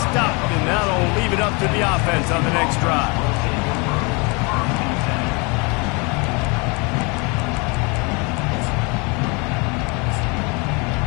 and that'll leave it up to the offense on the next drive.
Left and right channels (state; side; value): quieter; right; 29.9 dB